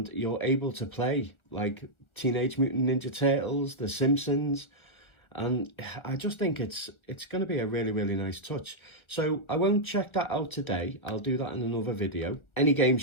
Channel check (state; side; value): late; right; 1.4 ms